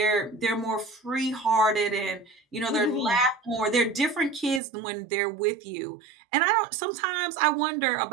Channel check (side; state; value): left; drops out; at 4.6 s